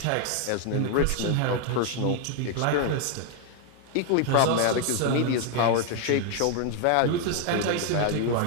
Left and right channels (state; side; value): different; both; correlation 0.00